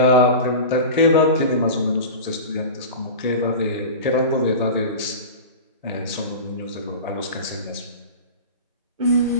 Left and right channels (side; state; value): both; inverted; correlation -0.30